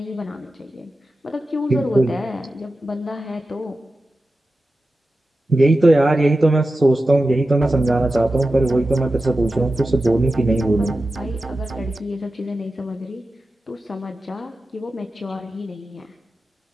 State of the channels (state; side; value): normal; both; correlation 0.93